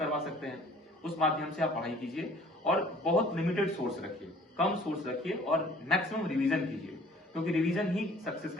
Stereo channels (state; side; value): normal; both; correlation 0.54